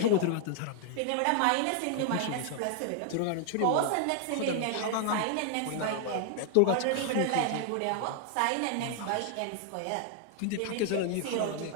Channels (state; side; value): different; both; correlation 0.00